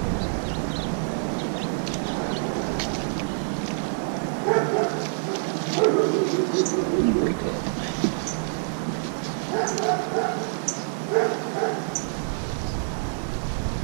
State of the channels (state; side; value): silent; left; 58 dB below the other